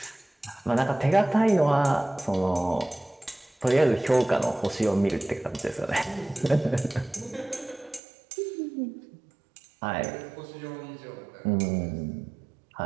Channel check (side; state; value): left; drops out; at 8.0 s